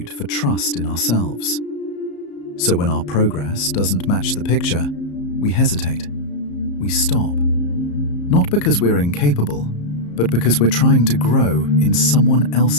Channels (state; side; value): late; right; 34 ms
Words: for trust in ourselves. So when our progress doesn't match the picture, we hesitate. We stop. Not because we're incapable, but because we're trying to grow in someone